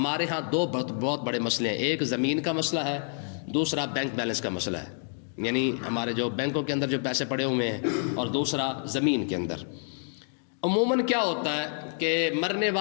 ہاں دو بہت بڑے مسئلے ہیں، ایک زمین کا مسئلہ ہے، دوسرا بینک بیلنس کا مسئلہ ہے. یعنی ہمارے جو بینکوں کے اندر جو پیسے پڑے ہوئے ہیں، اور دوسرا زمین کے اندر. عموماً کیا ہوتا ہے کہ مرنے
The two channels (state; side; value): silent; right; 59 dB below the other